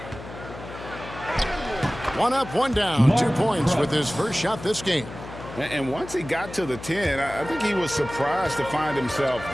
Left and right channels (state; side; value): noise; left; hum, 13 dB below the sound